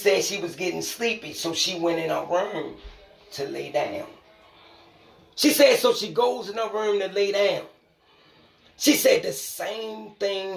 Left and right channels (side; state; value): both; identical; correlation 1.00